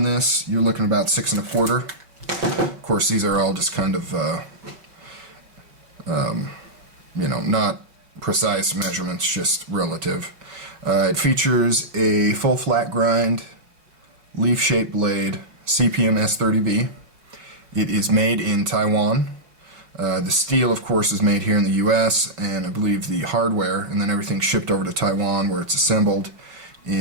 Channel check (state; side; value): late; left; 5.2 ms